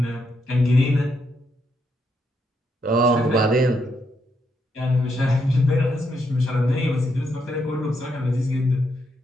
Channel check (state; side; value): normal; both; correlation 0.78